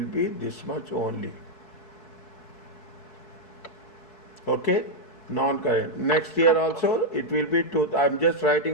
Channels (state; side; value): late; right; 4.6 ms